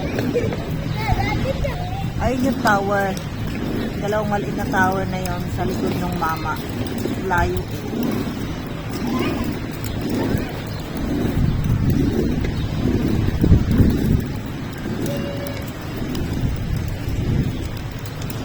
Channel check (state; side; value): identical; both; correlation 1.00